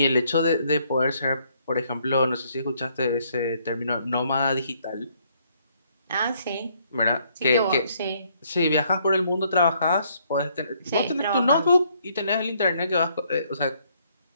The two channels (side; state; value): both; inverted; correlation -0.68